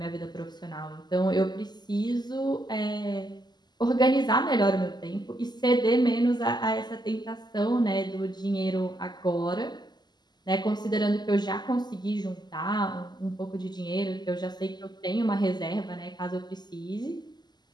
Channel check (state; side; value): late; right; 0.21 ms